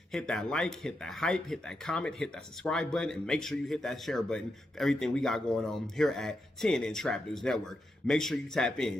Hit that like, hit that hype, hit that comment, hit that subscribe button, and make sure you hit that share button for everything we got going on here at TNN Trap News Network. Make sure you tap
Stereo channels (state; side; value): normal; both; correlation 0.85